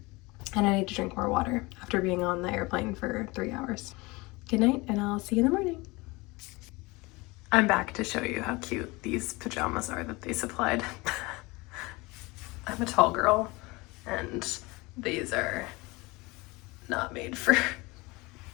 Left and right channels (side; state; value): right; quieter; 23.7 dB